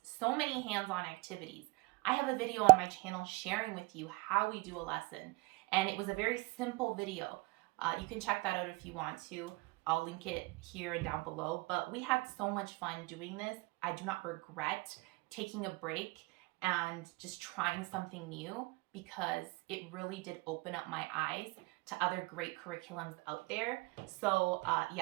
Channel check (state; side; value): quieter; left; 25.2 dB